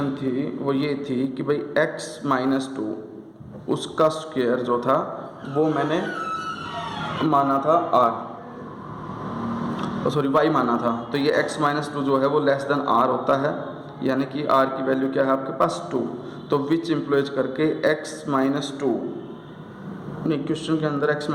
थी वो ये थी कि भाई x माइनस 2 उसका स्क्वायर जो था वो मैंने माना था y माना था, तो ये x माइनस 2 जो है वो लेस देन r होता है, यानी कि r की वैल्यू क्या है आपके पास 2, तो विच इम्प्लॉयज करके x माइनस 2, नहीं क्वेश्चन के अंदर x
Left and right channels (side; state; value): both; identical; correlation 1.00